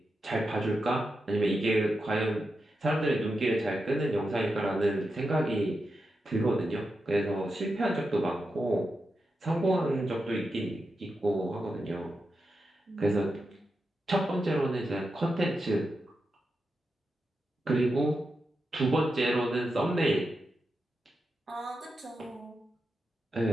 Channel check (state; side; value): normal; both; correlation 0.88